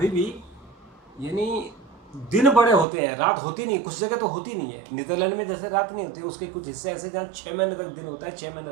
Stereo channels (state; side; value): drops out; left; at 2.9 s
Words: भी यानी दिन बड़े होते हैं, रात होती नहीं, कुछ जगह तो होती नहीं है। नीदरलैंड में जैसे रात नहीं होती, उसके कुछ हिस्से ऐसे जहाँ 6 महीने तक दिन होता है, 6